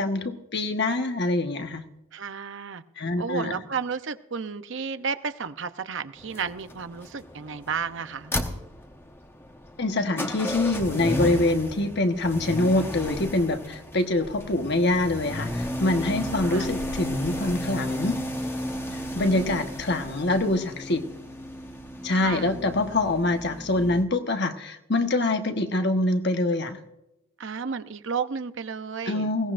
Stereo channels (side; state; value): both; normal; correlation 0.40